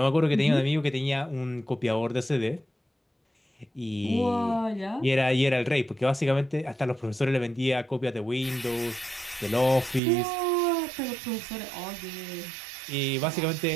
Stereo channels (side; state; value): left; drops out; at 10.0 s